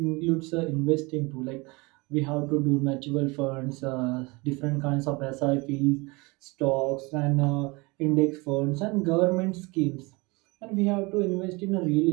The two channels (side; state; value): left; quieter; 25.8 dB